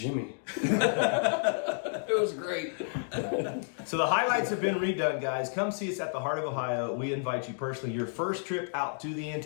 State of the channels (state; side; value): silent; right; digital silence